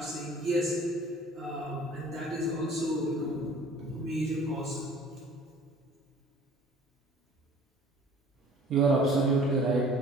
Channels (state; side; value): normal; both; correlation 0.50